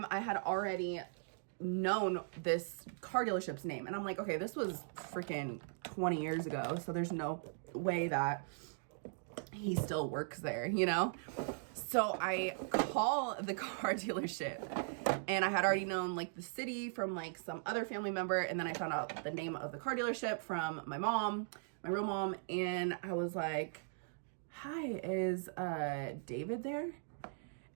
I had already known this car dealership's name. And I'm like, okay, this was freaking 20 years ago. So there's no way that he still works there, you know? So I call the car dealership, and I had already known like the city from like some other family member. And then I found out the name of the car dealership from my mom, my real mom. And I was like, hi, is David there?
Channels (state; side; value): silent; left; digital silence